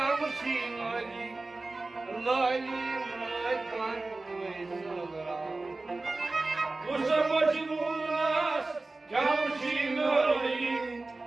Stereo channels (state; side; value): quieter; left; 3.3 dB